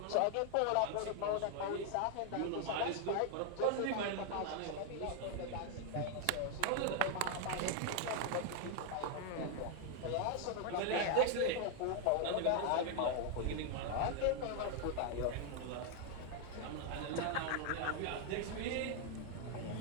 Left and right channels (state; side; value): different; both; correlation 0.00